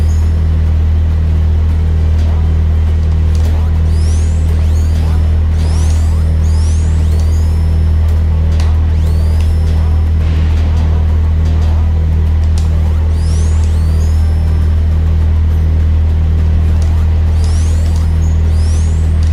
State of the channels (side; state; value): both; identical; correlation 1.00